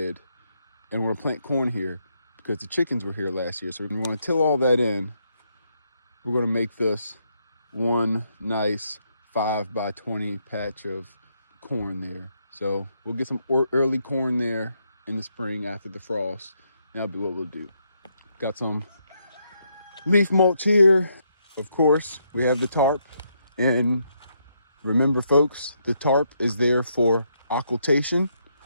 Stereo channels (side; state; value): both; inverted; correlation -0.76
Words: and we're going to plant corn here because the chickens were here last year. So we're going to till all that in. We're going to make this one nice 5 by 20 patch of corn there. So we'll get some early corn there in the spring after the frost. That'll be what we'll do. Got some leaf mulch here. Of course, we have the tarp. And remember, folks, the tarp is there for occultation.